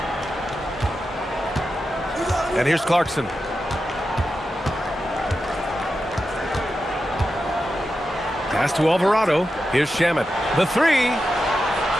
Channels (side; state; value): both; normal; correlation 0.90